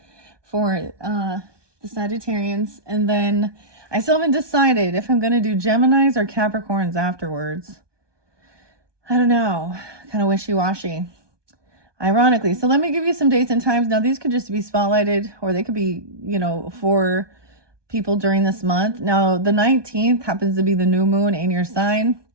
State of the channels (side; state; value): left; late; 1.2 ms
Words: for the Sagittarians. And then I still haven't decided if I'm going to do Geminis or Capricorns afterwards. I don't know. Kind of wishy-washy. Ironically. So let me give you some dates and times. Now, these could just be spotlighted, or they could be, for people during this month. Now, the 19th happens to be the new moon in your sign.